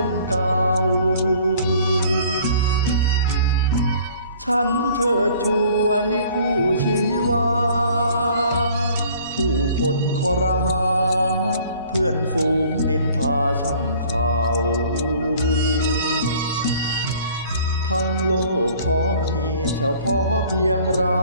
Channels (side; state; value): both; inverted; correlation -0.53